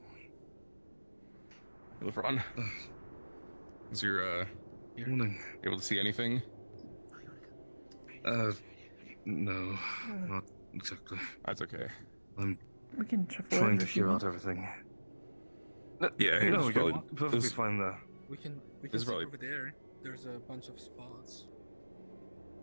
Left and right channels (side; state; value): both; inverted; correlation -1.00